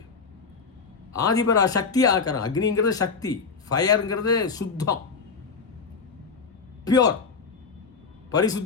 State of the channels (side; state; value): right; quieter; 5.1 dB